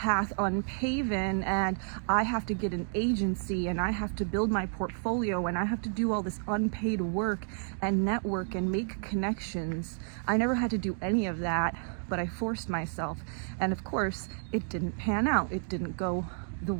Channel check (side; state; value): left; silent; 57 dB below the other